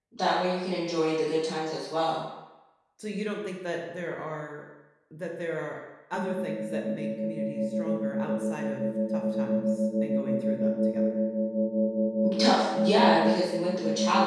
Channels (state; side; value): identical; both; correlation 1.00